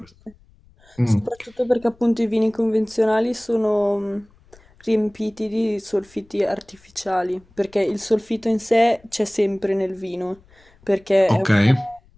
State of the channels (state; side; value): noise; left; rumble, 29 dB below the sound